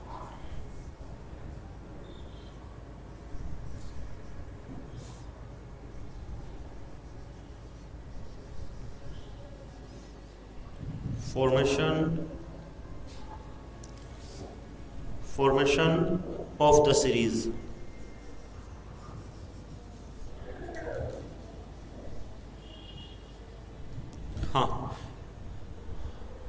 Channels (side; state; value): both; identical; correlation 1.00